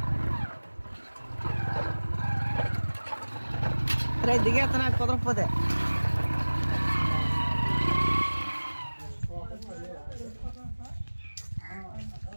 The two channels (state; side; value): inverted; both; correlation -1.00